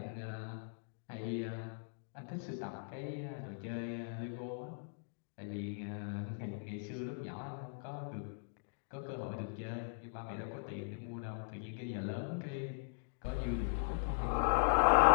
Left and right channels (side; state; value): right; silent; digital silence